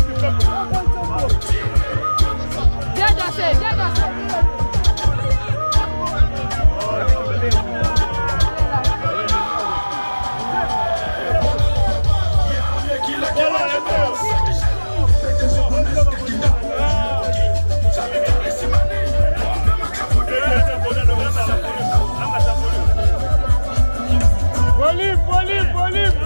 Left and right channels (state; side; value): inverted; both; correlation -1.00